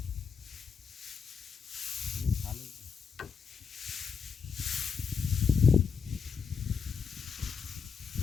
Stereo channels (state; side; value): quieter; right; 6.1 dB